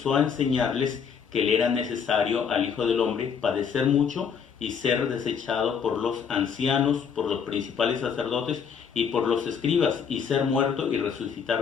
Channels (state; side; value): quieter; right; 6.8 dB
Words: a enseñarles que le era necesario al Hijo del Hombre padecer mucho y ser desechado por los ancianos, por los principales sacerdotes y por los escribas, y ser muerto y